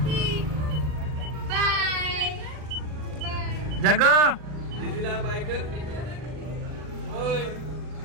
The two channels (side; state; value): left; late; 40 ms